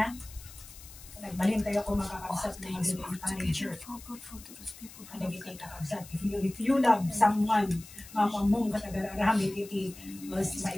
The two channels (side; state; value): left; noise; hiss, 18 dB below the sound